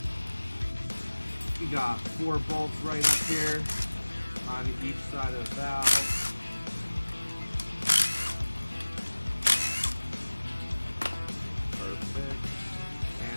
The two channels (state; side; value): inverted; both; correlation -1.00